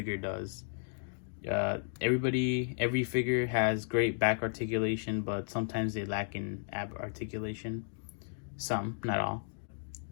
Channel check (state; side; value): silent; right; digital silence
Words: does. Every figure has great back articulation, but sometimes they lack in ab articulation. Some, not all.